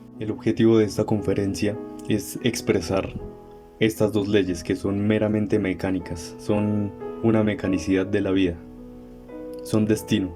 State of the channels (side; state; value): both; identical; correlation 1.00